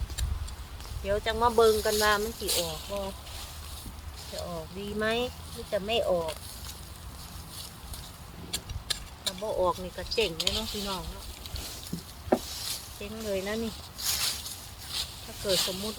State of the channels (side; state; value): both; identical; correlation 1.00